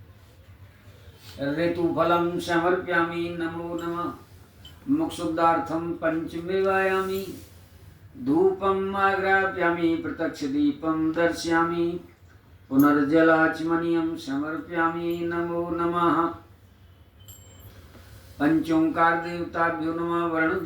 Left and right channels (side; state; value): both; identical; correlation 1.00